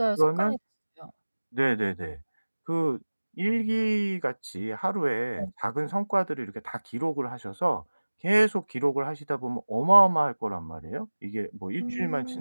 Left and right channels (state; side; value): inverted; both; correlation -1.00